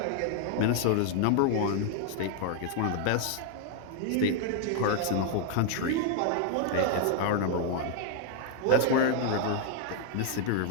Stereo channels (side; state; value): both; different; correlation 0.00